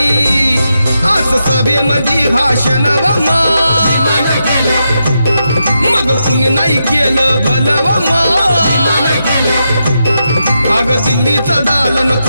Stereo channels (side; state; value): both; inverted; correlation -0.85